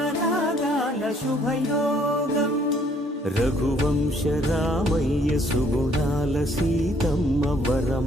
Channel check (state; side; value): normal; both; correlation 0.63